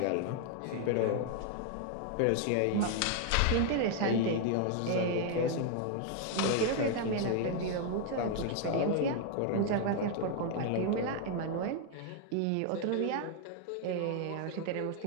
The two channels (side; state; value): both; different; correlation 0.00